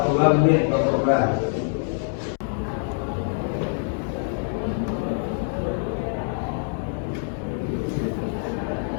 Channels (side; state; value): right; silent; 62 dB below the other